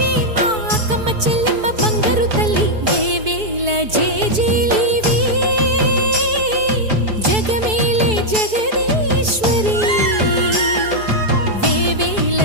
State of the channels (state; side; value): late; left; 4.6 ms